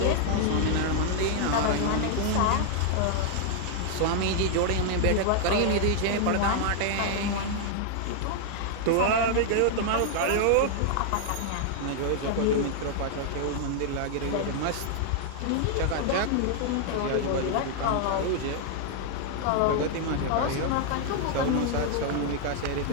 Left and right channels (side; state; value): both; different; correlation 0.00